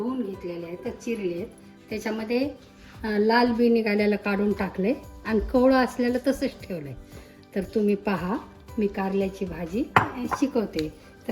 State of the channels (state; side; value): identical; both; correlation 1.00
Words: घेतलेले आहेत, तर चिरलेत. त्याच्यामध्ये लाल बी निघालेलं काढून टाकले आणि कवळं असलेलं तसंच ठेवलं आहे. तर तुम्ही पहा, मी कारल्याची भाजी शिकवते.